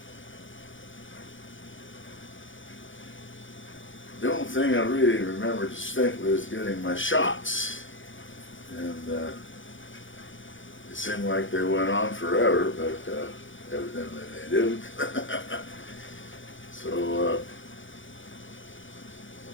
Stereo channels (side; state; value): right; late; 0.56 ms